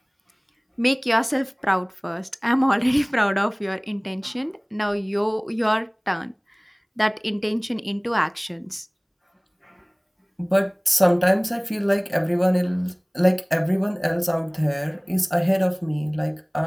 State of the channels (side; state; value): both; identical; correlation 1.00